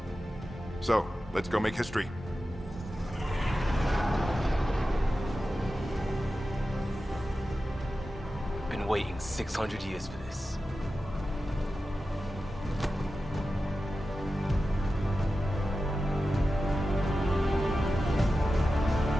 So, let's go make history. Been waiting 600 years for this.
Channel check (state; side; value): normal; both; correlation 0.93